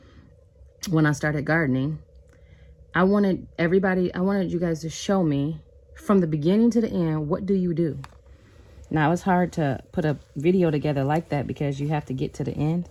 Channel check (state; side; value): identical; both; correlation 1.00